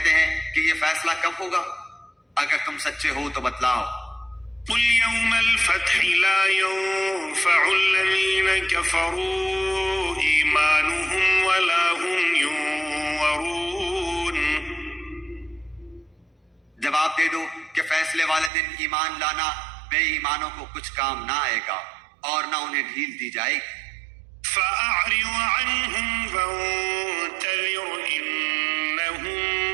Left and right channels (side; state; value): left; drops out; at 18.5 s